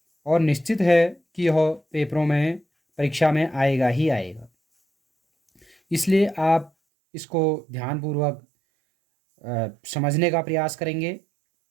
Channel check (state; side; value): drops out; left; at 6.7 s